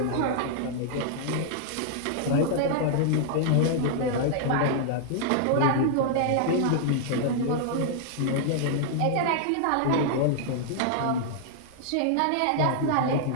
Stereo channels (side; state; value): both; different; correlation -0.01